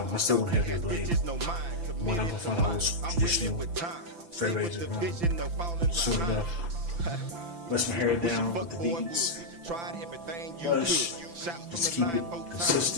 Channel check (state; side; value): late; left; 5.9 ms